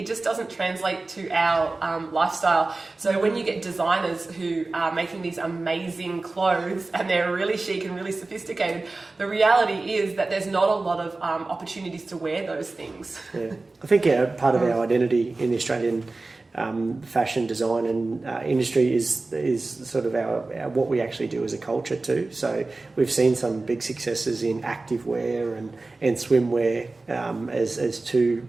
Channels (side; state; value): left; quieter; 3.4 dB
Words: just doesn't translate to our lifestyle. So when you get designers who are making these amazing clothes and they're really chic and really sophisticated, the reality is that there's not a lot of opportunities to wear those things. I think part of our identity in the Australian fashion design and industry is sort of our what we actually do as a culture too. So we've seen some big successes in activewear and swimwear as two